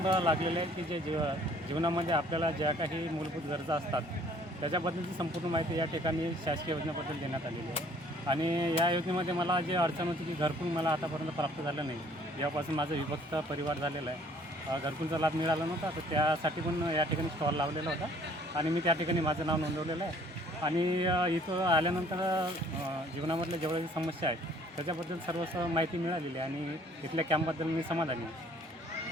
लागलेले आहे की जे जीवनामध्ये आपल्याला ज्या काही मूलभूत गरजा असतात त्याच्याबद्दलची संपूर्ण माहिती या ठिकाणी शासकीय योजनेबद्दल देण्यात आलेली आहे. आणि या योजनेमध्ये मला जे अडचण होती की घरकुल मला आतापर्यंत प्राप्त झालं नाही. यापासून माझं विभक्त परिवार झालेला आहे. घरकुलचा लाभ मिळाला नव्हता, तर त्यासाठी पण या ठिकाणी स्टॉल लावलेला होता आणि मी त्या ठिकाणी माझं नाव नोंदवलेलं आहे. आणि इथं आल्यानंतर जीवनामधल्या जेवढ्या समस्या आहेत त्याच्याबद्दल सर्व माहिती मिळालेली आहे आणि इथल्या कॅम्पबद्दल मी समाधानी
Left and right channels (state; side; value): normal; both; correlation 0.57